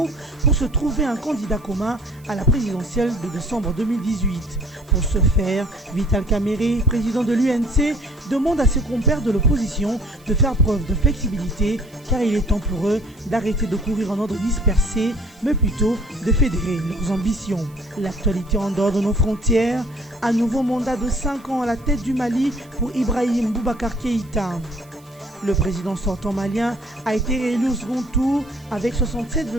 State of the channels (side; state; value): right; noise; hiss, 28 dB below the sound